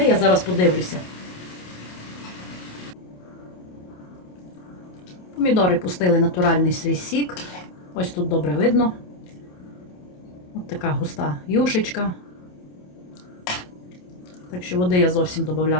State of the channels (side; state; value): right; late; 28 ms